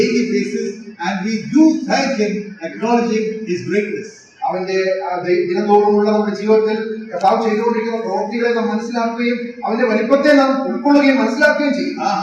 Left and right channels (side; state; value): both; identical; correlation 1.00